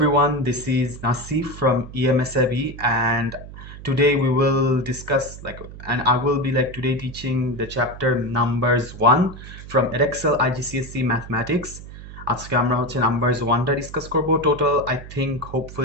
This is Nasseef from EMSAB, and today we will discuss and I will be today teaching the chapter numbers 1 from Edexcel IGCSE Mathematics. আজকে আমরা হচ্ছে numbers 1টা discuss করব. Total, I think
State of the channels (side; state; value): right; noise; hum, 14 dB below the sound